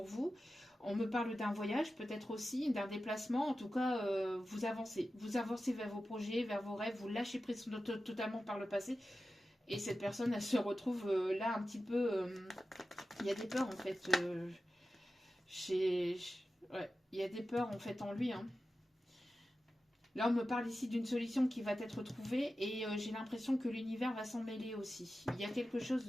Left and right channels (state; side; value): normal; both; correlation 0.93